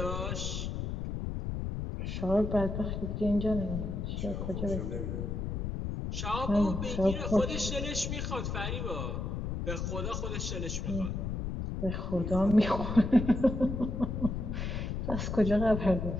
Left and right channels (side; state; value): left; noise; rumble, 3 dB below the sound